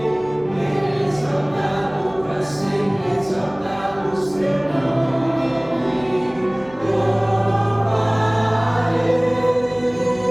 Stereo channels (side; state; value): right; noise; hum, 23 dB below the sound